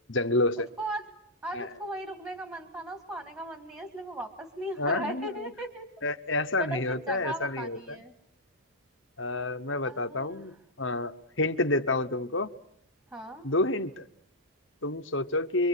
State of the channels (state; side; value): normal; both; correlation -0.08